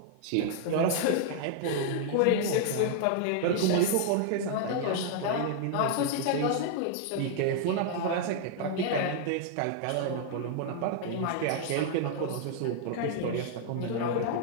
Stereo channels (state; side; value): different; both; correlation -0.01